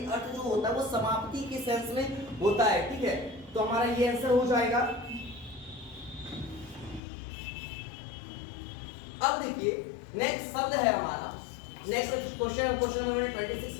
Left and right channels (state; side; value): drops out; right; at 7.0 s